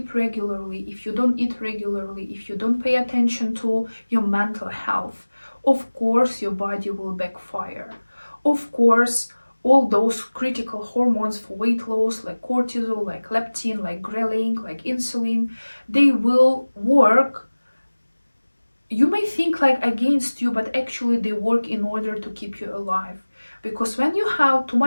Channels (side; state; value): both; inverted; correlation -1.00